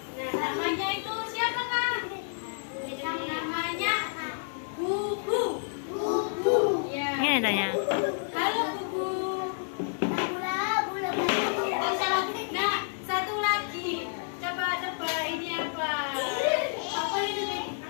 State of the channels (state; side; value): silent; right; digital silence